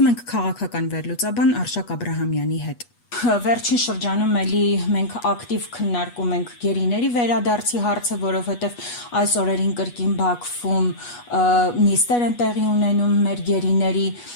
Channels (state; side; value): late; right; 8.3 ms